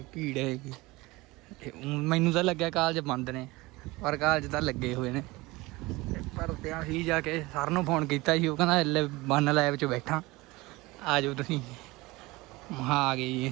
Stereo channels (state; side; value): quieter; left; 21.7 dB